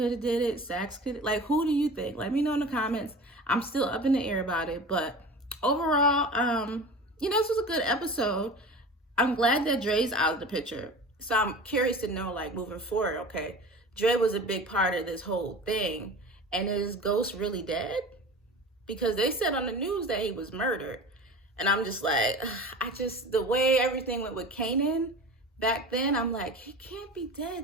have did it? Sax could? Like, who do you think? Let me know in the comments. I'm still up in the air about it, but overall, you know, this was a good episode. I'm glad that Dre's out of the picture. So I'm curious to know, like, moving forward, okay, Dre was a big part of this whole thing. And is Ghost really dead? Because they said on the news that he was murdered. And I'm just like, the way everything went with Kanan back then, I'm like, he can't be dead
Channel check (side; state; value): both; normal; correlation 0.36